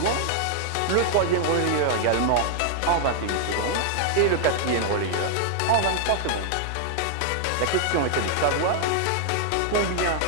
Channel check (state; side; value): different; both; correlation 0.00